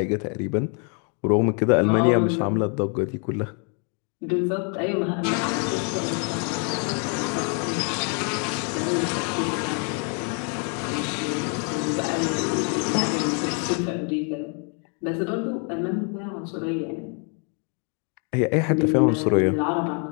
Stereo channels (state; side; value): quieter; right; 39.5 dB